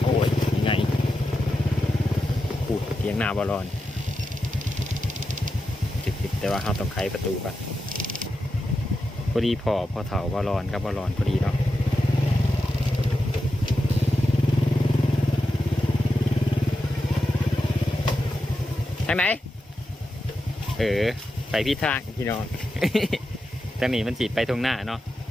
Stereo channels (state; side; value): normal; both; correlation 0.89